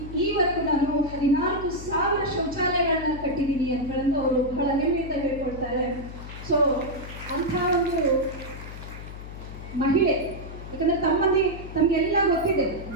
ಈವರೆಗೂ ನಾನು 14,000 ಶೌಚಾಲಯಗಳನ್ನ ಕಟ್ಟಿದ್ದೀನಿ ಅಂತೇಳಂದು ಅವರು ಬಹಳ ಹೆಮ್ಮೆಯಿಂದ ಹೇಳ್ಕೊಳ್ತಾರೆ. ಸೊ ಅಂಥ ಒಂದು ಮಹಿಳೆ, ಯಾಕಂದರೆ ತಮಗೆಲ್ಲ ಗೊತ್ತಿದೆ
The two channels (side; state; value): left; noise; hum, 12 dB below the sound